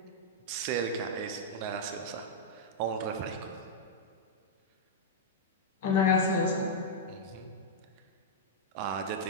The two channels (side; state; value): both; normal; correlation -0.07